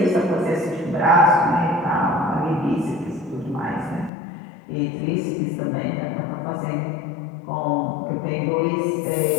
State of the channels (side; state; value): right; drops out; at 4.1 s